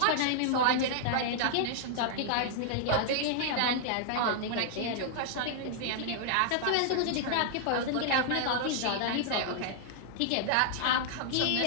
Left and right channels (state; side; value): different; both; correlation -0.01